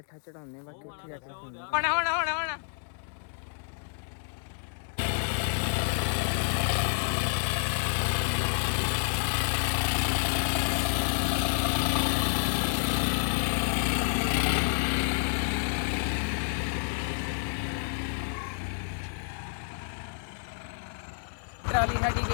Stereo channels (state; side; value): silent; right; digital silence